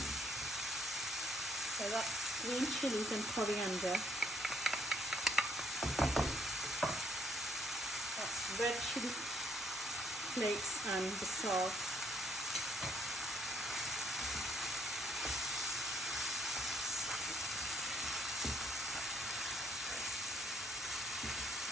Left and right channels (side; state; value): both; normal; correlation 0.67